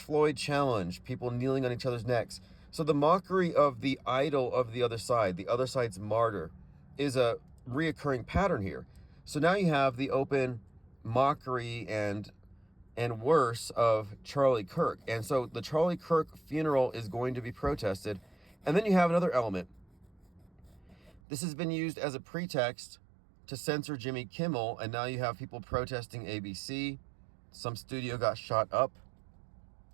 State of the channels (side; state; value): left; drops out; at 21.2 s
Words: challenge, people kneeling on each other's necks. So the mockery of the idol of the other side's martyr, is a reoccurring pattern here. So now you have the open mockery and worse of Charlie Kirk. And so the Charlie Kirk funeral is going to be protested. And then you have another element. This has been used as a pretext to censor Jimmy Kimmel, and now you have people protesting ABC. Some studio got shot up.